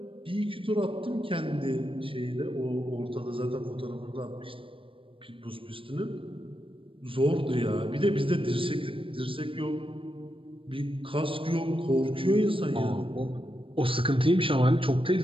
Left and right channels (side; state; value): left; late; 0.26 ms